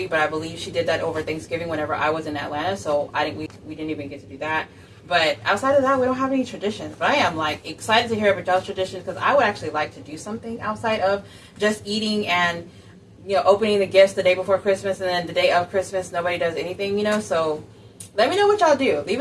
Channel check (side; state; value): both; identical; correlation 1.00